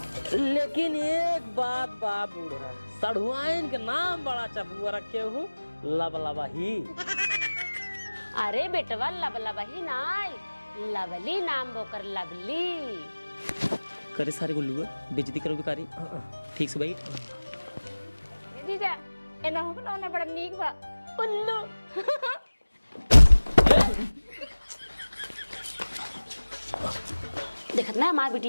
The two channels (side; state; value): both; inverted; correlation -1.00